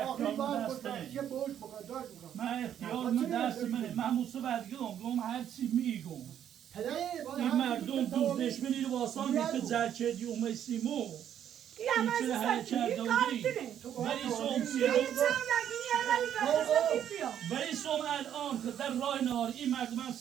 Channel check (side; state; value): left; quieter; 9.9 dB